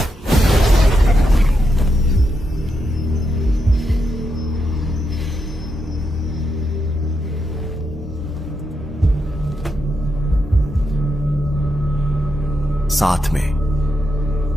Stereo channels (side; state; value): both; normal; correlation 0.84